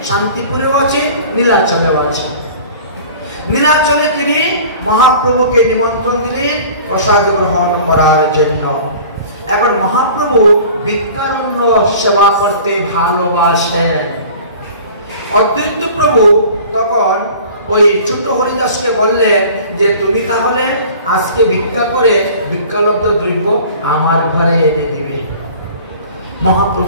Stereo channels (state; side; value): inverted; both; correlation -0.44